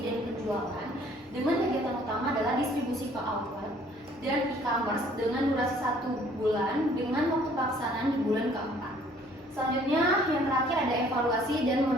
penjualan dengan kegiatan utama adalah distribusi ke outlet dan e-commerce dengan durasi 1 bulan dengan waktu pelaksanaan di bulan keempat. Selanjutnya yang terakhir ada evaluasi dan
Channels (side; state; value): both; normal; correlation 0.58